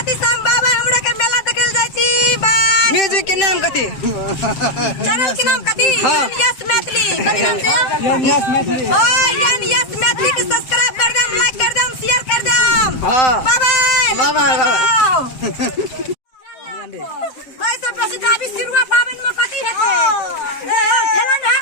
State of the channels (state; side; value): late; right; 7.7 ms